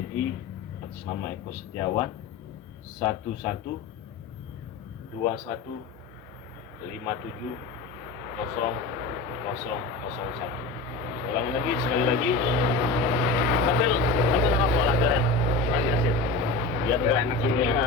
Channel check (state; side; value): quieter; right; 3.4 dB